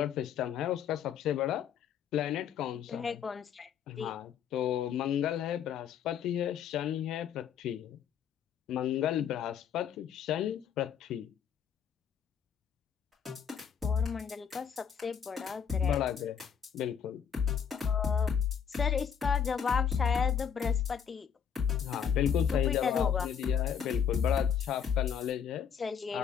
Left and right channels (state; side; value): quieter; right; 7.8 dB